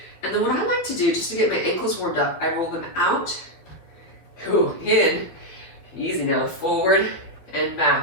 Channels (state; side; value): late; right; 12 ms